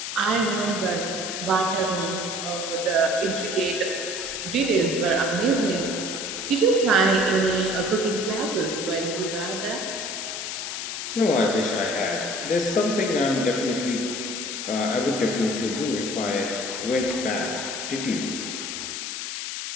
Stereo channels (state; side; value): noise; left; hiss, 5 dB below the sound